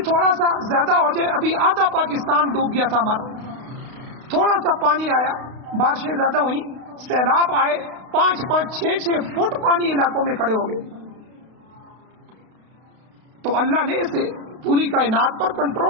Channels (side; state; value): left; late; 32 ms